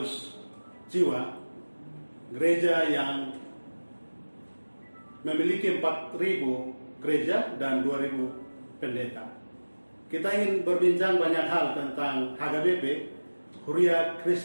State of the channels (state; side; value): inverted; both; correlation -1.00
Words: jiwa, gereja yang memiliki 4.000 gereja dan 2.000 pendeta. Kita ingin berbincang banyak hal tentang HKBP, Huria